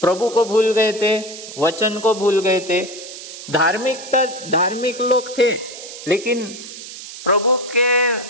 प्रभु को भूल गए थे, वचन को भूल गए थे, धार्मिक लोग थे लेकिन प्रभु के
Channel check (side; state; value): right; noise; hiss, 13 dB below the sound